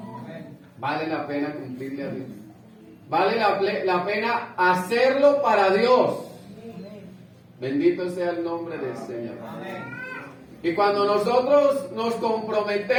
Vale la pena cumplirle a Dios. Vale la pena hacerlo para Dios. Bendito sea el nombre del Señor. Y cuando nosotros nos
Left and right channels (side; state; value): both; identical; correlation 1.00